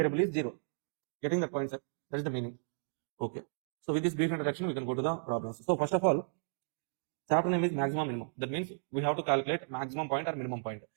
is 0. Getting the point, sir? That is the meaning. Okay. So with this brief introduction, we can go to the problems. So first of all, chapter name is maximum minimum. That means we have to calculate maximum point or minimum point.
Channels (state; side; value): silent; left; digital silence